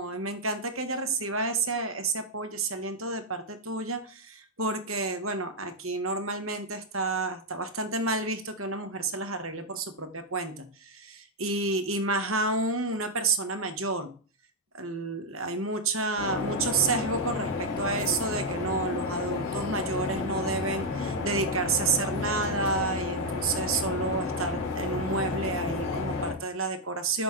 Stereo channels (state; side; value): normal; both; correlation 0.00